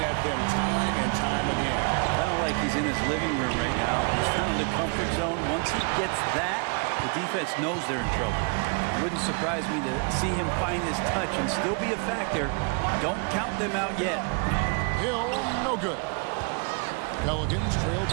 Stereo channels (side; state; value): left; quieter; 35.7 dB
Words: at them time and time again. I don't like he's in his living room right now. He's found the comfort zone. Once he gets that, the defense knows they're in trouble. It wouldn't surprise me to see him find his touch and still be a factor. Don't count them out yet. Hill, no good. Pelicans trail